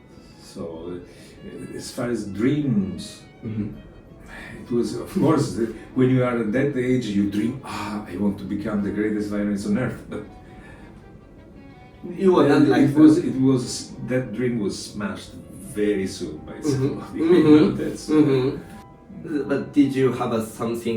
So as far as dreams, it was, of course, when you are at that age, you dream, I want to become the greatest violinist on earth. But you were not like that dream was smashed very soon by school. But did you have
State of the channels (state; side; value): identical; both; correlation 1.00